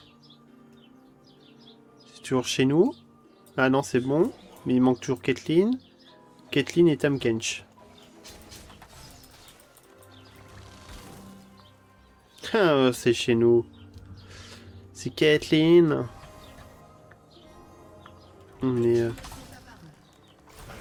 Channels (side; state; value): both; identical; correlation 1.00